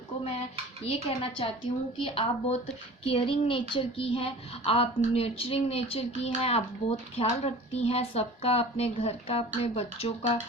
मैं ये कहना चाहती हूँ कि आप बहुत केयरिंग नेचर की हैं, आप नर्चरिंग नेचर की हैं, आप बहुत ख्याल रखती हैं सबका, अपने घर का, अपने बच्चों का,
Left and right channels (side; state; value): both; normal; correlation 0.41